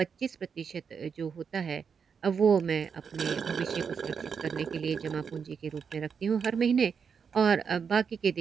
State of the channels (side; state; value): left; quieter; 6.4 dB